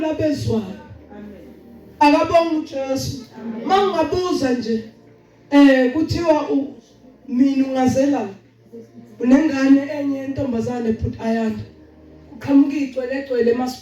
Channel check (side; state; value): both; identical; correlation 1.00